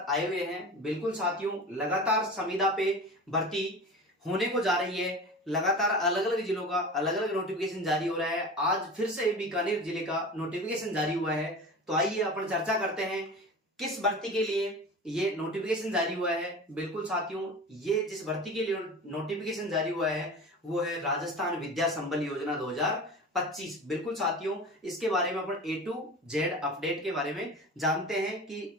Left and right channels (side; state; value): both; normal; correlation 0.33